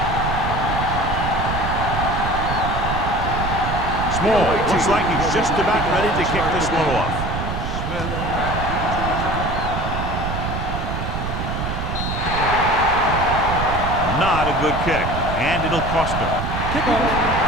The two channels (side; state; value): right; noise; rumble, 3 dB below the sound